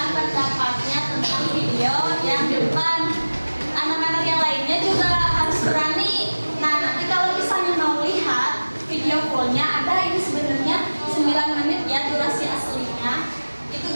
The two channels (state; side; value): inverted; both; correlation -1.00